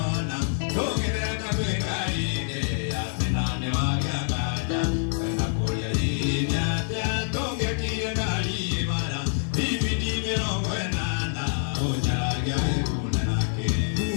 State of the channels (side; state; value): right; silent; digital silence